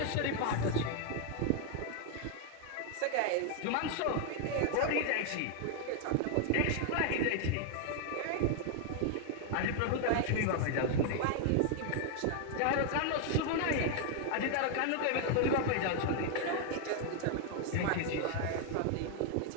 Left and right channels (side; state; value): both; different; correlation 0.00